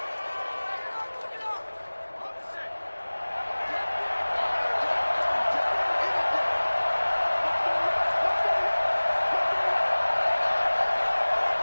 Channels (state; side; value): inverted; both; correlation -1.00